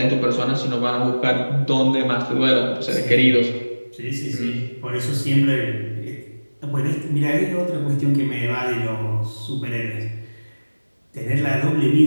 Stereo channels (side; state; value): both; inverted; correlation -1.00